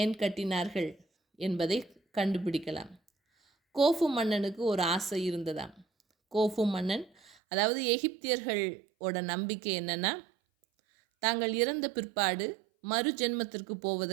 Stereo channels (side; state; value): left; drops out; at 7.3 s